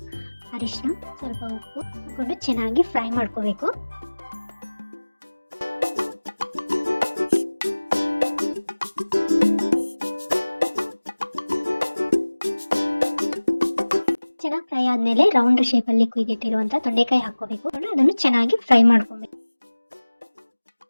ಅರಿಶಿನ, ಸ್ವಲ್ಪ ಉಪ್ಪು ಹಾಕೊಂಡು ಚೆನ್ನಾಗಿ ಫ್ರೈ ಮಾಡ್ಕೋಬೇಕು. ಚೆನ್ನಾಗಿ ಫ್ರೈ ಆದಮೇಲೆ ರೌಂಡ್ ಶೇಪಲ್ಲಿ ಕುಯ್ದಿಟ್ಟಿರುವಂಥ ತೊಂಡೆಕಾಯಿ ಹಾಕೋಬೇಕು. ಅದನ್ನು ಚೆನ್ನಾಗಿ ಫ್ರೈ ಮಾಡ್ಕೊಬೇಕು.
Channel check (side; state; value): both; inverted; correlation -1.00